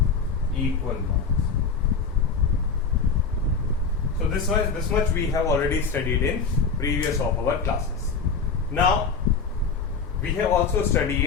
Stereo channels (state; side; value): quieter; right; 5.2 dB